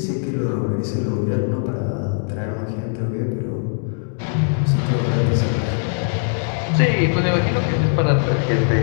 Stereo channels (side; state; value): right; silent; 65 dB below the other